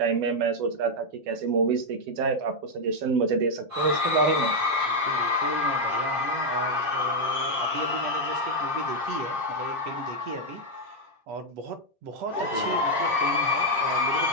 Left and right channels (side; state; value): left; late; 7.4 ms